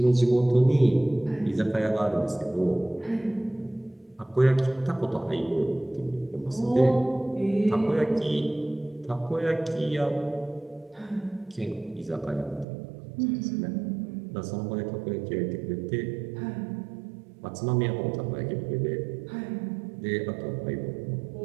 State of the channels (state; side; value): drops out; left; at 12.7 s